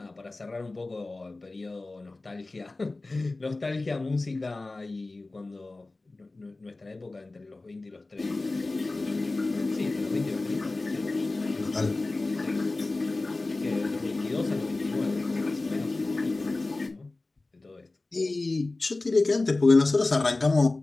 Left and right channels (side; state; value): right; quieter; 3.2 dB